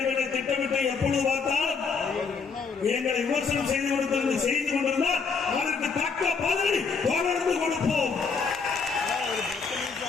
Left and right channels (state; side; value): quieter; right; 5.2 dB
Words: திட்டமிட்டு எப்பொழுது பார்த்தாலும் எங்களை விமர்சனம் செய்து கொண்டிருந்தால் அதற்கு தக்க பதிலை தொடர்ந்து கொடுப்போம்.